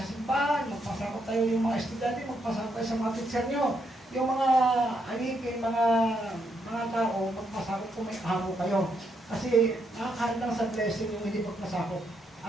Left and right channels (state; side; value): normal; both; correlation 0.77